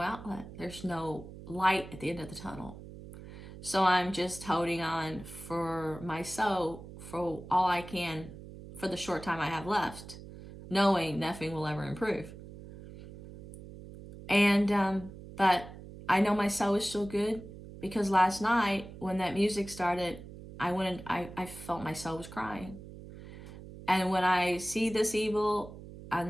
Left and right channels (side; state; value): right; noise; hum, 14 dB below the sound